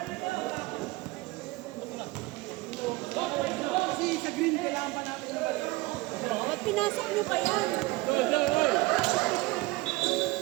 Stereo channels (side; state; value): left; quieter; 21.6 dB